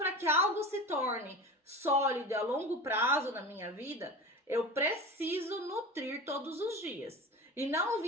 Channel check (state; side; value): normal; both; correlation 0.31